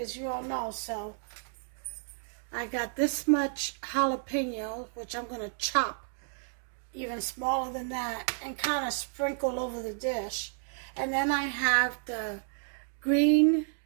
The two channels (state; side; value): silent; left; digital silence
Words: you all know. So I got this much jalapeno, which I'm going to chop even smaller than that and kind of sprinkle over the dish. And then I have the green